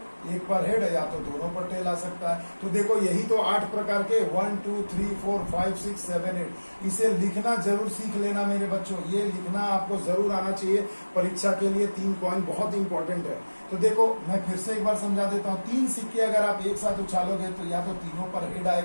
एक पर हेड या तो दोनों पर टेल आ सकता है। तो देखो यही तो 8 प्रकार के 1 2 3 4 5 6 7 8, इसे लिखना जरूर सीख लेना मेरे बच्चों, ये लिखना आपको जरूर आना चाहिए परीक्षा के लिए। 3 पॉइंट बहुत इंपॉर्टेंट है। तो देखो मैं फिर से एक बार समझा देता हूँ, 3 सिक्के अगर आप एक साथ उछालोगे तो या तो तीनों पर हेड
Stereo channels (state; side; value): inverted; both; correlation -1.00